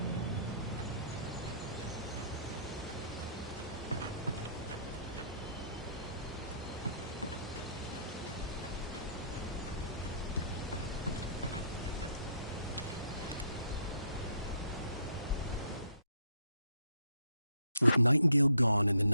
With Nightingale gone and the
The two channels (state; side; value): inverted; both; correlation -0.65